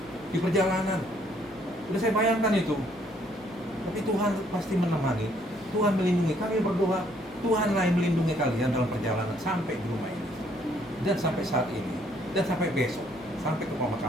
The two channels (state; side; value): noise; left; hum, 26 dB below the sound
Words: di perjalanan. Udah saya bayangkan itu. Tapi Tuhan pasti menemani, Tuhan melindungi. Kami berdoa, Tuhanlah yang melindungi kalian dalam perjalanan sampai di rumah ini, dan sampai saat ini, dan sampai besok, sampai ke